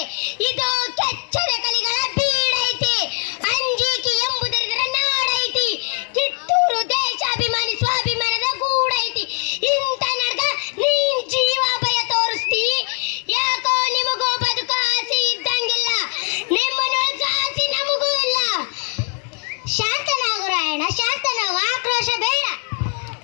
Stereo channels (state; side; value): quieter; right; 37.2 dB